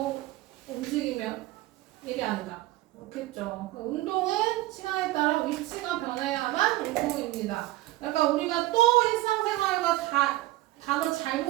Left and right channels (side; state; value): left; quieter; 17.5 dB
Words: 움직이면 일이 아니다. 그렇겠죠. 운동은 시간에 따라 위치가 변해야만 운동입니다. 그러니까 우리가 또 일상생활과 단어